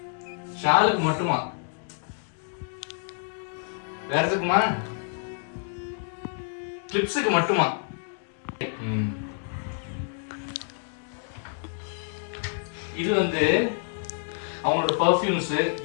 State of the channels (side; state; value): right; silent; 59 dB below the other